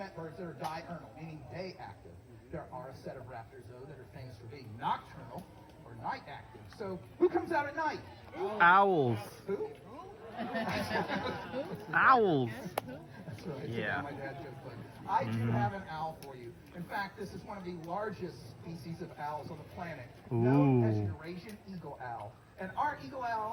birds that are diurnal, meaning day active. There are a set of raptors, though, that are famous for being nocturnal or night active. So, who comes out at night? Owls. Who? Owls. That's right. Yeah. My dad joked, but I do have an owl for you. In fact, this is one of the largest species of owls on the planet, known as Eurasian eagle owl. And our eagle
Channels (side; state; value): both; identical; correlation 1.00